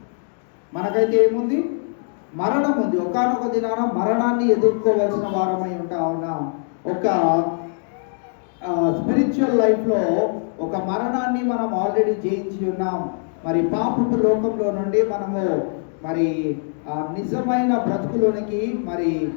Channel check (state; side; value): silent; right; 60 dB below the other